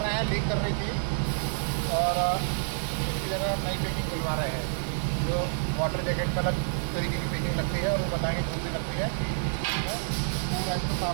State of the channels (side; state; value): left; silent; digital silence